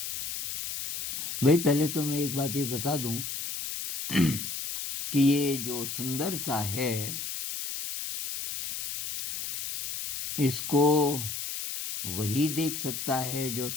भाई पहले तो मैं एक बात ये बता दूं कि ये जो सुंदरता है इसको वही देख सकता है जो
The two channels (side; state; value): left; noise; hiss, 5 dB below the sound